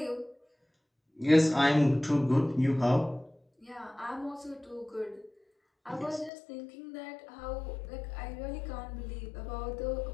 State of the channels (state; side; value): drops out; right; at 6.3 s